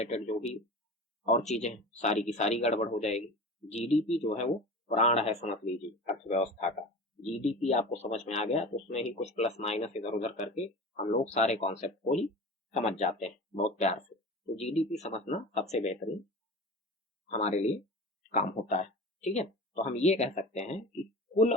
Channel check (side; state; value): both; normal; correlation 0.34